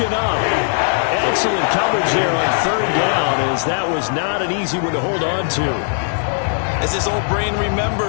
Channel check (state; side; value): silent; right; digital silence